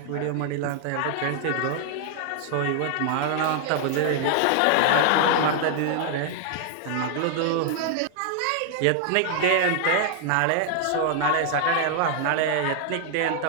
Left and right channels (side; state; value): both; different; correlation 0.00